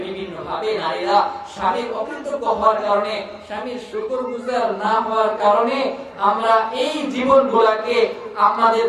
বিভিন্ন ভাবে নারীরা স্বামীর অকৃতজ্ঞ হওয়ার কারণে, স্বামীর শুকরগুজার না হওয়ার কারণে আমরা এই জীবনগুলোকে আমাদের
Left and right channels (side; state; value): both; identical; correlation 1.00